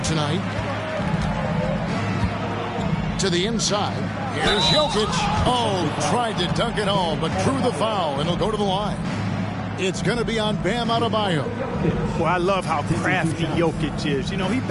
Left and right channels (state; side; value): identical; both; correlation 1.00